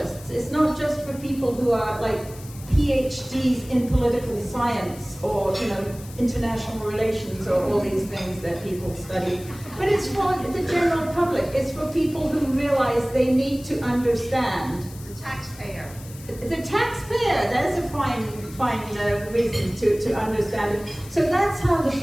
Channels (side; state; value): left; noise; hiss, 19 dB below the sound